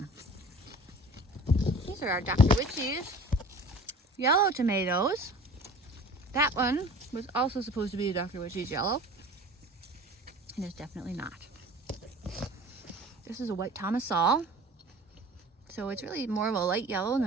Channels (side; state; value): both; normal; correlation 0.43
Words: These are our Dr. Witchy's yellow tomatoes. That one was also supposed to be a Dr. Witchy's yellow. And it's definitely not. This is a white Tomasol. So it's really more of a light yellow